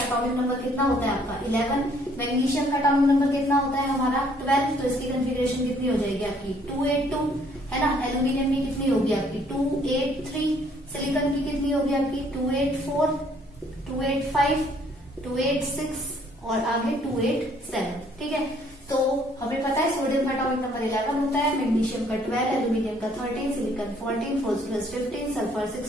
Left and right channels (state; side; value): normal; both; correlation 0.63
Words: एटॉमिक नंबर कितना होता है आपका 11। मैग्नीशियम का एटॉमिक नंबर कितना होता है हमारा 12, तो इसकी कॉन्फ़िगरेशन कितनी हो जाएगी आपकी 282, है ना। एल्यूमिनियम की कितनी होगी आपकी 283, सिलिकॉन की कितनी होगी आपकी 284, 285, 286 और आगे 287। ठीक है, तो हमें पता है सोडियम का एटॉमिक नंबर 11 होता है, मैग्नीशियम का 12, एल्यूमिनियम का 13, silicon 14, phosphorus 15, sulphur